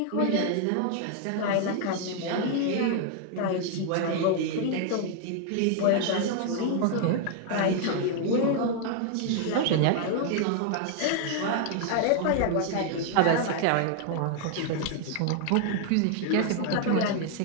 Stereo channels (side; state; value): both; different; correlation 0.00